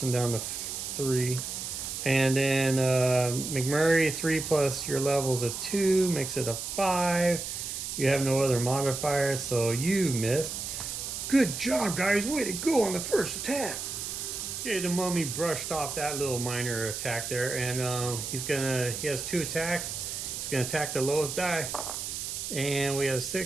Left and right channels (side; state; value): right; noise; hiss, 5 dB below the sound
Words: him down to 3. And then McMurray, 3 plus your level is a 2, makes it a 5. You have no other modifiers, so you missed. Good job, guys. Way to go on the first attack. Okay, the mummy brushed off that little minor attack there, and he has 2 attacks. He's gonna attack the lowest die, and we have